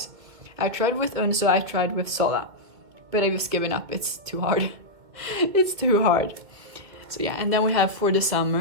I tried with Unso, I tried with Sola, but I just given up. It's too hard. It's too hard. So yeah, and then we have For the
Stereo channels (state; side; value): late; left; 2.1 ms